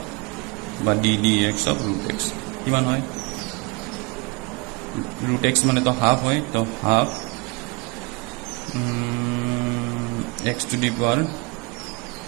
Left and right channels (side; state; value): left; quieter; 28.6 dB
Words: বা ddx of root x কিমান হয় root x মানে তো হাফ হয় তো half x to the power